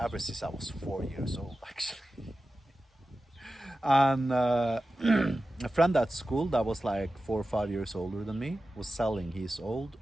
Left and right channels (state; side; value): normal; both; correlation 0.94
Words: since I was 4 years old, actually. And a friend at school that was like 4 or 5 years older than me was selling his old